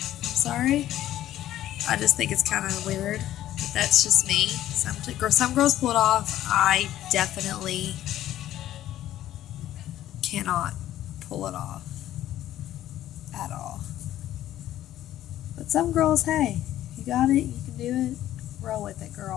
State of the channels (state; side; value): quieter; right; 13.0 dB